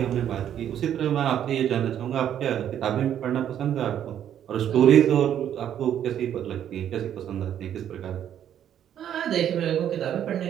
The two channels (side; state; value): left; quieter; 10.1 dB